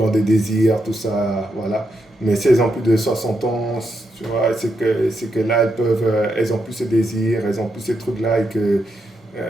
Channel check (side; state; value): both; normal; correlation 0.82